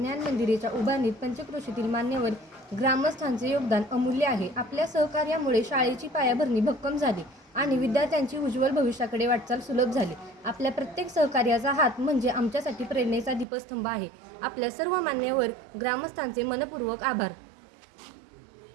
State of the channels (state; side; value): drops out; left; at 13.5 s